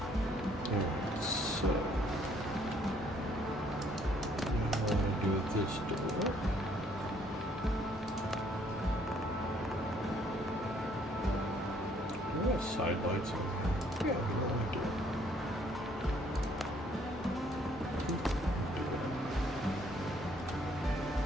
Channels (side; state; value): both; normal; correlation 0.64